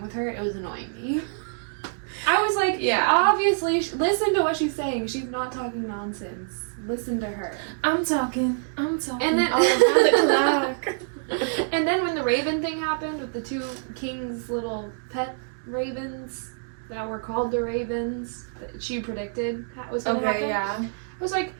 with her, it was annoying me. I was like, obviously, listen to what she's saying. She's not talking nonsense. Listen to her. I'm talking. And then, and then when the raven thing happened with the two kings' little pet ravens that were called the ravens, that she predicted was going to happen. Yeah. I was like,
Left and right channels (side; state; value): left; silent; digital silence